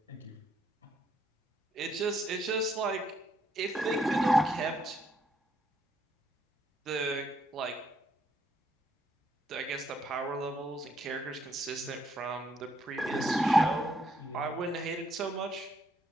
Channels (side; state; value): both; normal; correlation 0.73